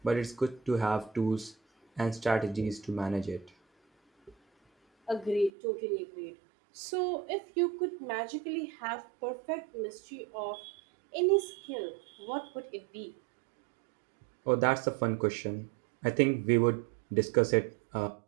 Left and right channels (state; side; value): drops out; left; at 5.5 s